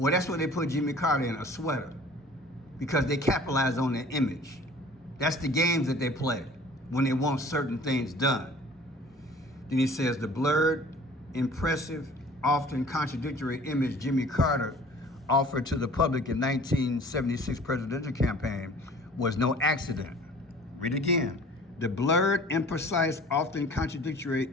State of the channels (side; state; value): both; normal; correlation 0.48